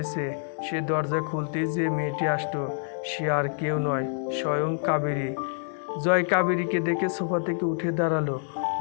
সে দরজা খুলতেই যে মেয়েটি আসতো, সে আর কেউ নয়, স্বয়ং কাবেরী। জয় কাবেরীকে দেখে সোফা থেকে উঠে দাঁড়ালো।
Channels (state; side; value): silent; right; 60 dB below the other